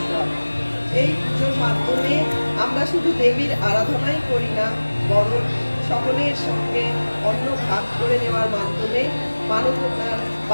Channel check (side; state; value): both; inverted; correlation -1.00